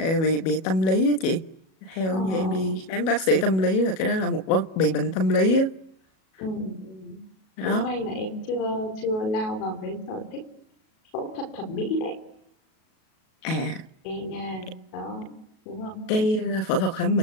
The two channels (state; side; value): late; right; 37 ms